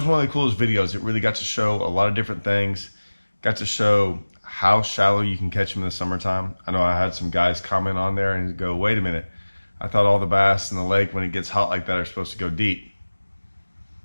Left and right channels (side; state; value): both; inverted; correlation -1.00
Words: one of the coolest videos. It really got to show a lot of different things. Got to show how shallow you can catch them in the summertime. I know I had some guys comment on there and go, "Wait a minute! I thought all the bass in the lake when it gets hot like that are supposed to go deep."